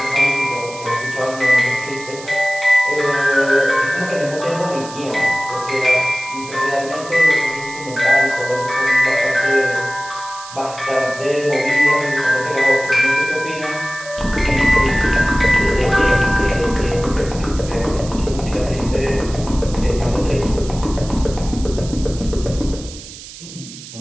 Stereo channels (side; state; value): right; noise; hiss, 15 dB below the sound